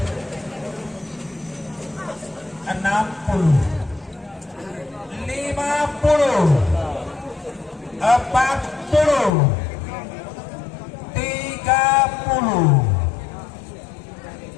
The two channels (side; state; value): right; drops out; at 9.3 s